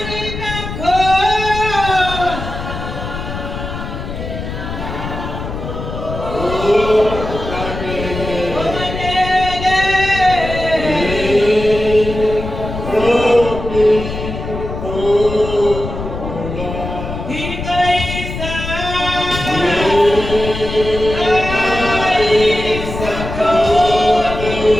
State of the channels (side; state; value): left; noise; rumble, 7 dB below the sound